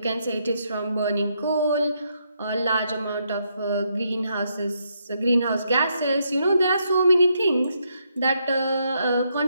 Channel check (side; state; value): both; inverted; correlation -0.76